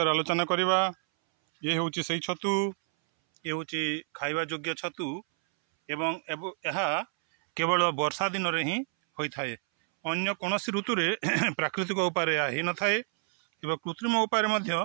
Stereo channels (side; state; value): left; silent; 59 dB below the other